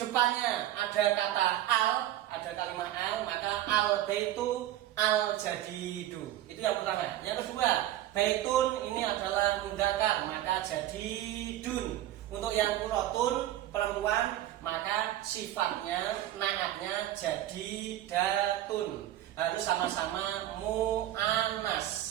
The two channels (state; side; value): quieter; left; 13.6 dB